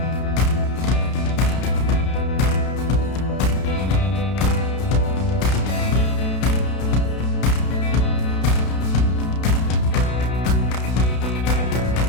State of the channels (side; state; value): right; late; 32 ms